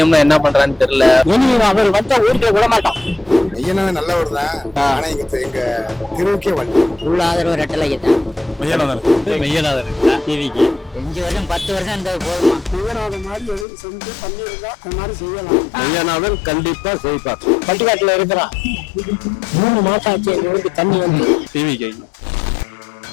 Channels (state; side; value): drops out; right; at 13.7 s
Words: என்ன பண்றான்னு தெரியல. அவர் வந்தா ஊருக்குள்ள விட மாட்டோம். மெய்யனாதான் நல்லவர் தான். ஆனா எங்க தெருவுக்கே வந்து உள்ள ஆதரவு ரெட்டலைக்கு தான். மெய்யநாதன் டிவிக்கு 5 வருஷம் 10 வருஷம் இருந்தது போதுமா? மெய்யனாத மாதிரி எதுவும் செஞ்சு பண்ணியிருந்தா அந்த மாதிரி செய்யலாம். மெய்யநாதன் கண்டிப்பா செய்வார். பட்டிக்காட்டுல இருக்கிறான். 3 மாசம் ஆச்சு எங்க ஊருக்கு தண்ணி வந்து. டிவிக்கு